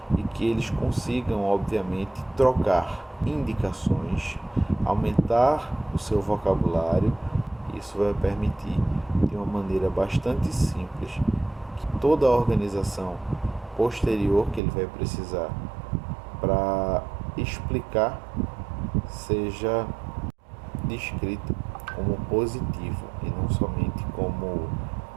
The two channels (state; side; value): drops out; left; at 14.6 s